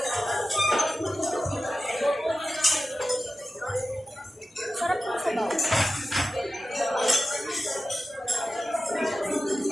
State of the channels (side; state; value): both; normal; correlation 0.94